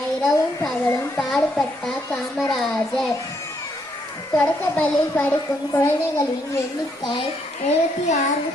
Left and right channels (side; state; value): both; normal; correlation 0.73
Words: இரவும் பகலும் பாடுபட்டார் காமராஜர். தொடக்கப்பள்ளியில் படிக்கும் குழந்தைகளின் எண்ணிக்கை